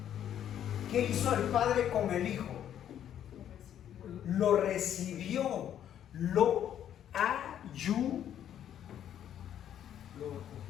¿Qué hizo el Padre con el Hijo? Lo recibió, lo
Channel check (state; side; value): quieter; right; 10.2 dB